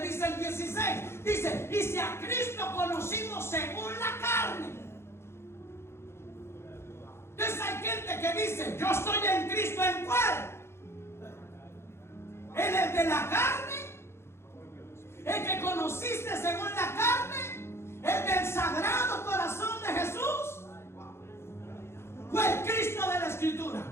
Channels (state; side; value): late; right; 0.12 ms